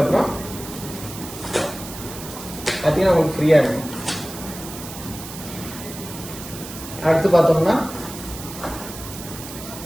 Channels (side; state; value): right; noise; hiss, 12 dB below the sound